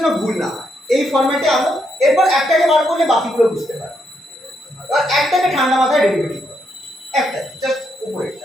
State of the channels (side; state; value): both; normal; correlation 0.78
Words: ভুল না হয়, এই ফরম্যাটে আনো। এরপর একটাকে বার করলে বাকিগুলো বুঝতে পারবে। আর একটাকে ঠান্ডা মাথায় ডেরিভেটিভ করো, একটা জাস্ট